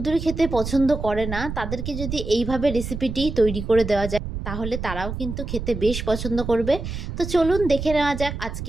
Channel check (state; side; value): noise; right; rumble, 6 dB below the sound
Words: খেতে পছন্দ করে না তাদেরকে যদি এইভাবে রেসিপিটি তৈরি করে দেওয়া যায় তাহলে তারাও কিন্তু খেতে বেশ পছন্দ করবে। তো চলুন দেখে নেওয়া যাক